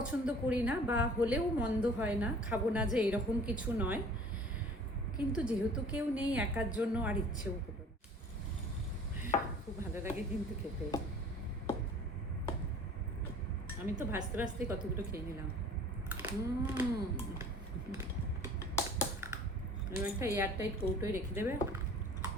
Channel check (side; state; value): both; normal; correlation 0.48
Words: করি না, বা হলেও মন্দ হয় না, খাবো না যে এরকম কিছু নয়, কিন্তু যেহেতু কেউ নেই একার জন্য আর ইচ্ছেও হলো না। খুব ভালো লাগে কিন্তু খেতে। আমি তো ভাজতে ভাজতে কতগুলো খেয়ে নিলাম। একটা এয়ারটাইট কৌটোয় রেখে দেবে,